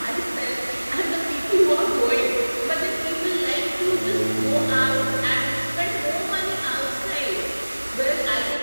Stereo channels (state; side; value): inverted; both; correlation -1.00